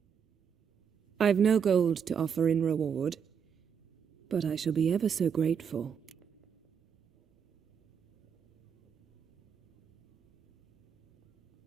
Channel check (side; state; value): left; quieter; 7.3 dB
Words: I've no gold to offer in reward, but I shall be ever so grateful.